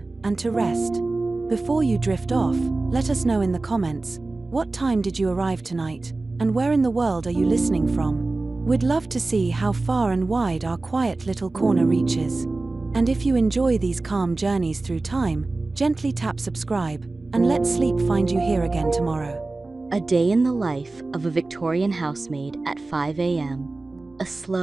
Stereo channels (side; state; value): left; quieter; 3.3 dB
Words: and to rest. Before you drift off, let us know in the comments, what time did you arrive tonight, and where in the world are you listening from? We'd love to see how far and wide our quiet little corner reaches. And if you enjoy these calm journeys through time, gently tap subscribe, and let sleep find you here again tomorrow. A day in the life of a Victorian housemaid at 5 a.m. A